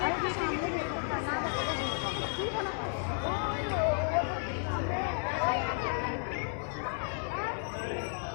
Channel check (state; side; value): silent; right; 56 dB below the other